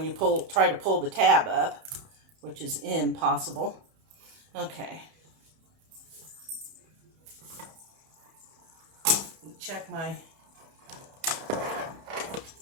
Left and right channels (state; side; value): late; left; 31 ms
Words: you try to pull the tab up, which is impossible. Okay. Check my